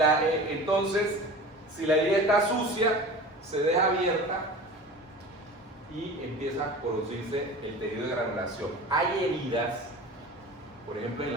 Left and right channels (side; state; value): both; normal; correlation 0.36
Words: entonces, si la herida está sucia, se deja abierta y empieza a producirse el tejido de granulación. Hay heridas, por ejemplo en